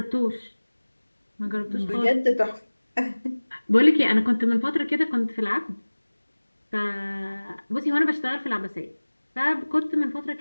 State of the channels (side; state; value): both; inverted; correlation -1.00